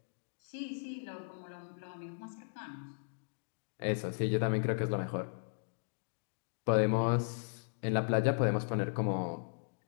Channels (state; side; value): silent; right; digital silence